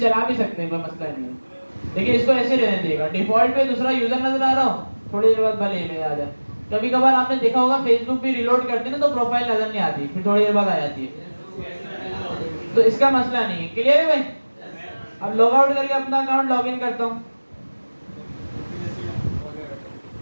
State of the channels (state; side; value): inverted; both; correlation -1.00